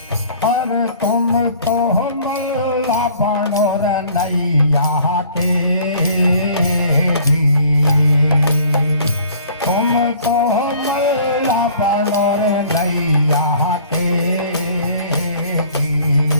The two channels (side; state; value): both; inverted; correlation -0.53